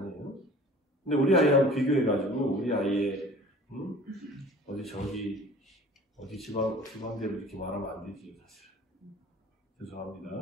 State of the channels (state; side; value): normal; both; correlation 0.47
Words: 근데 우리 아이하고 비교해가지고 우리 아이의 어디 지방대로 이렇게 말하면 안 되지 사실.